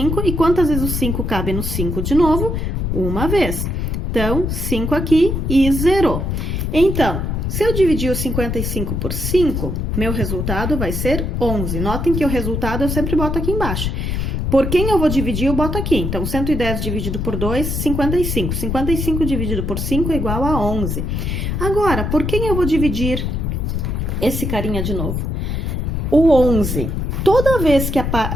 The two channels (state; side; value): noise; left; rumble, 1 dB below the sound